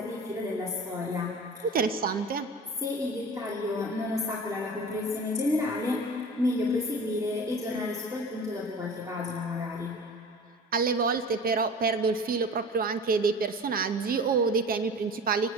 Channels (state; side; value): normal; both; correlation 0.38